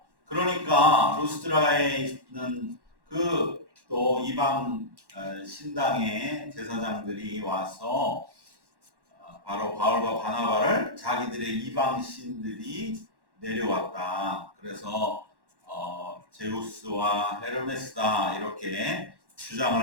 그러니까 루스드라에 있는 그 또 이방 신당의 제사장들이 와서 바로 바울과 바나바를 자기들의 이방 신들이 내려왔다. 그래서 제우스와 헤르메스다 이렇게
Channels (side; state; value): left; late; 1.1 ms